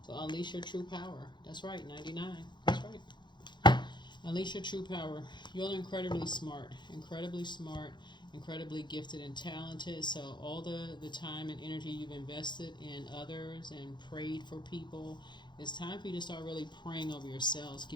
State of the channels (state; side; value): late; right; 0.22 ms